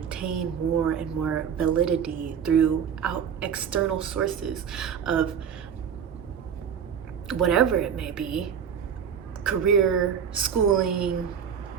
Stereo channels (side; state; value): left; quieter; 7.7 dB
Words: more and more validity through external sources of whatever it may be, career, schooling,